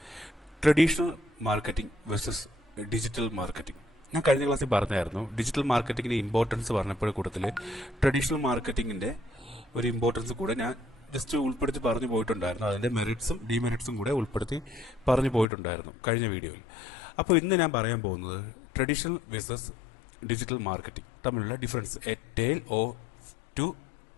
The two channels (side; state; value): right; drops out; at 15.5 s